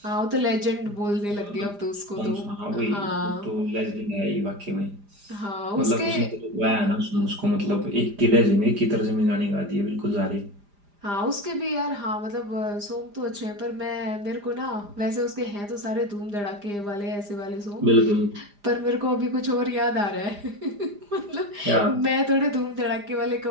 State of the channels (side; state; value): left; late; 4.9 ms